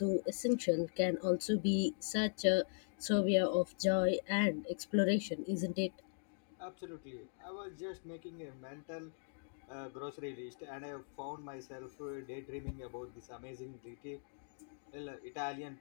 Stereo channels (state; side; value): silent; right; digital silence